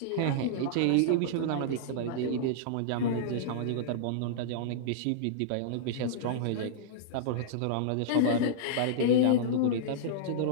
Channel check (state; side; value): different; both; correlation -0.02